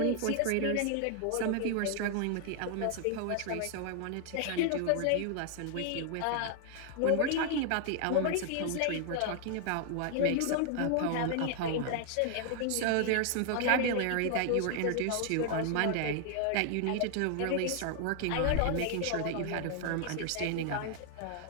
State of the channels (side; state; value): both; different; correlation 0.00